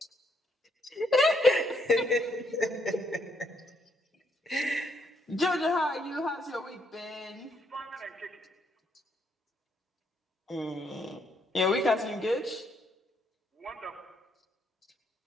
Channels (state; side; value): normal; both; correlation 0.73